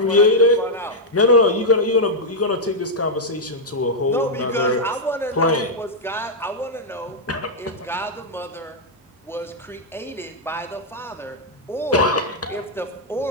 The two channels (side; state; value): both; normal; correlation -0.04